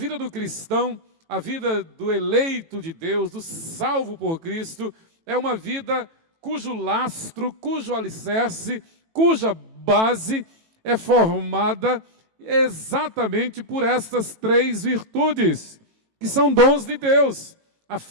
do cristão, a vida do eleito de Deus, do salvo por Cristo, é uma vida cujo lastro, cujo alicerce, cuja base é formada exatamente por estas três virtudes, que são dons de Deus: a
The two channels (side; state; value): left; late; 18 ms